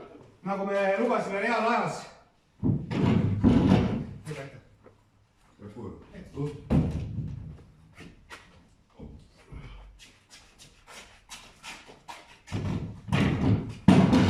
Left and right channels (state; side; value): identical; both; correlation 1.00